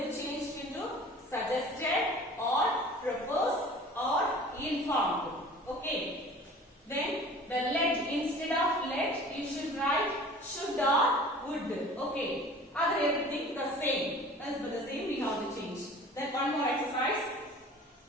to change into suggested or proposed or informed. Okay. Then the let, instead of let you should write should or would. Okay. Other everything the same. As for the same we have to change. Then one more exercise.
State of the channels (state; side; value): normal; both; correlation 0.45